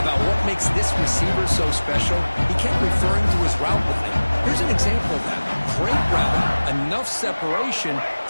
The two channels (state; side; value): inverted; both; correlation -1.00